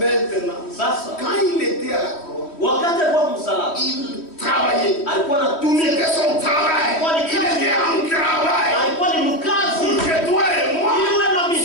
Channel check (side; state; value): right; late; 3.1 ms